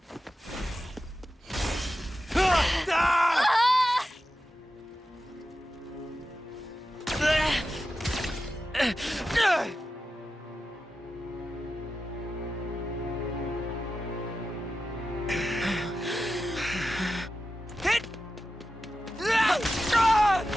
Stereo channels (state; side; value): normal; both; correlation 0.92